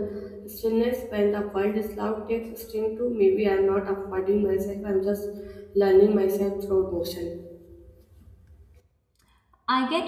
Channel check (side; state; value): both; identical; correlation 1.00